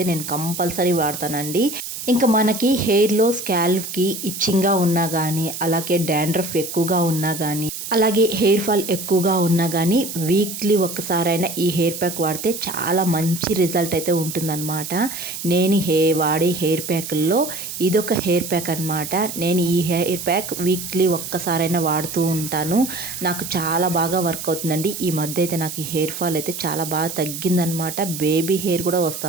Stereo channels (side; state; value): right; noise; hiss, 8 dB below the sound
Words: నేను కంపల్సరీ వాడతానండి. ఇంకా మనకి హెయిర్లో స్కాల్ప్కి ఇచ్చింగ్గా ఉన్నా కానీ, అలాగే డాండ్రఫ్ ఎక్కువగా ఉన్నా కానీ, అలాగే హెయిర్ ఫాల్ ఎక్కువగా ఉన్నా కానీ వీక్లీ ఒక్కసారైనా ఈ హెయిర్ ప్యాక్ వాడితే చాలా మంచి రిజల్ట్ అయితే ఉంటుందన్నమాట. నేను వాడే హెయిర్ ప్యాక్ల్లో ఇదొక హెయిర్ ప్యాక్ అనమాట. నేను ఈ హెయిర్ ప్యాక్ వీక్లీ ఒక్కసారైనా వాడుతూ ఉంటాను. నాకు చాలా బాగా వర్క్ అవుతుందండి. ఈ మధ్య అయితే నాకు ఈ హెయిర్ ఫాల్ అయితే చాలా బాగా తగ్గిందనమాట. బేబీ హెయిర్ కూడా